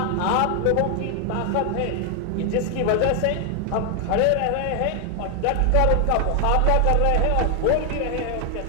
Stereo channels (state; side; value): different; both; correlation 0.00